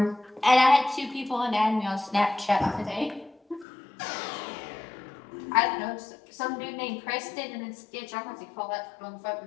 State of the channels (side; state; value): right; drops out; at 3.7 s